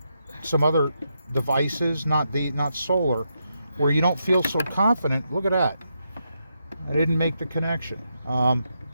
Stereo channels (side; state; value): both; inverted; correlation -0.82